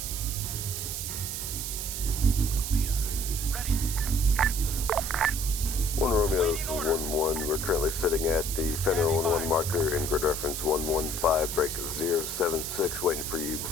One Romeo, this is 1-1. We're currently sitting at the Fenner 1-1 marker in grid reference 115, break 076, waiting for you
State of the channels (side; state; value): right; noise; hiss, 4 dB below the sound